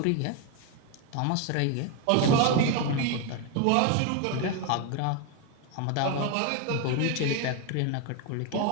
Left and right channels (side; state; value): both; different; correlation 0.01